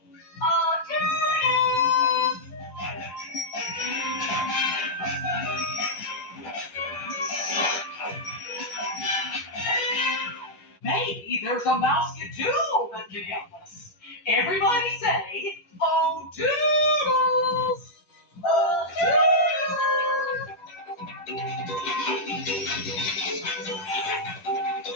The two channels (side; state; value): right; late; 10 ms